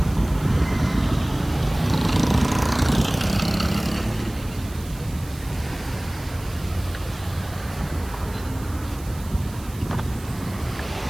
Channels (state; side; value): noise; right; hiss, 19 dB below the sound